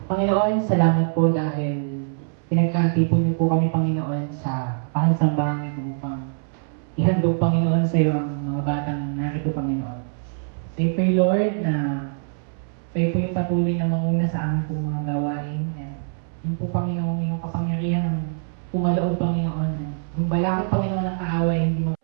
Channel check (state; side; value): silent; left; 63 dB below the other